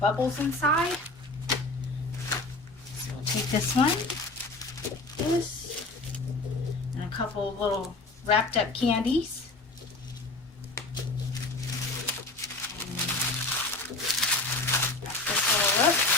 bubbles inside. So we'll take this one, this, and a couple of little wrapped up candies. Wrap this all up,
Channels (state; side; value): quieter; right; 3.0 dB